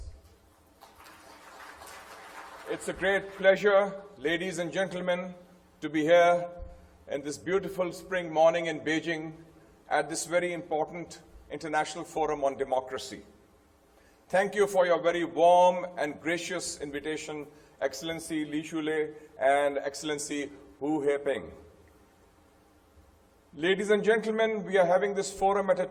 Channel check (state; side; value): identical; both; correlation 1.00